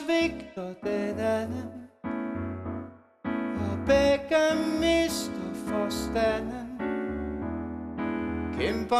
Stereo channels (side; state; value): both; identical; correlation 1.00